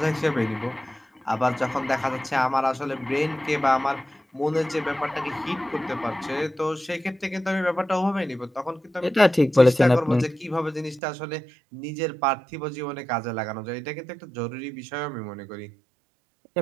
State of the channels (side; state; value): left; drops out; at 11.0 s